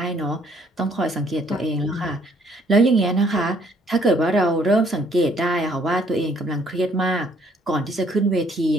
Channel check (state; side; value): normal; both; correlation 0.64